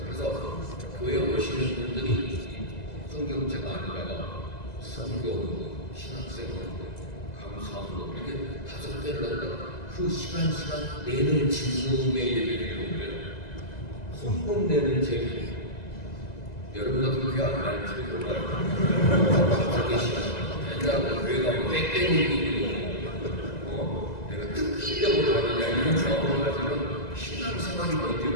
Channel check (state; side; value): late; right; 2.0 ms